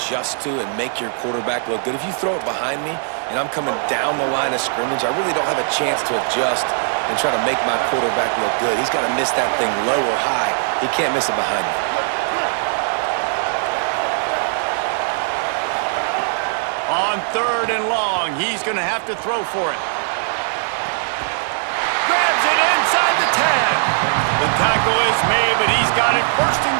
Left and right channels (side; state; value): left; silent; digital silence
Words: to and make your quarterback look good. If you throw it behind me and I'm coming down the line of scrimmage, I really don't have a chance to adjust and try to make my quarterback look good. He's got to miss that thing low or high. He can't miss it behind me. On 3rd and long, he's going to have to throw for it. Grabs it inside the 10. The tackle is made, but he's got it 1st and